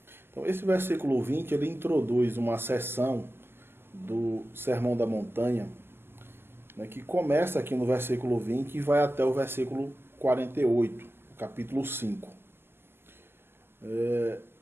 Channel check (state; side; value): late; left; 0.11 ms